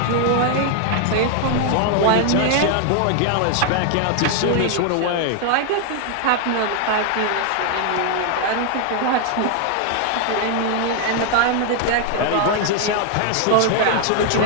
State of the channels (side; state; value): both; different; correlation 0.00